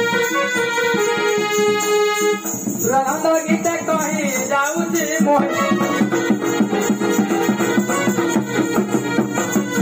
रंग गीते कही जाऊची मोहि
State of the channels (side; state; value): both; identical; correlation 1.00